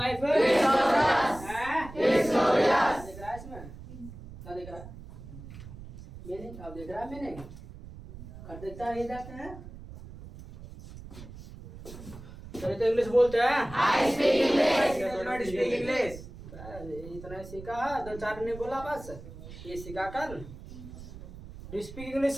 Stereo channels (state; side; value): noise; right; rumble, 14 dB below the sound